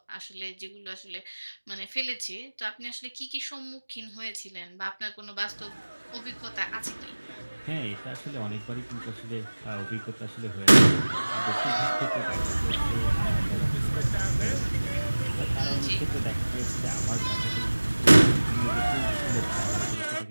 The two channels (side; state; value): both; inverted; correlation -1.00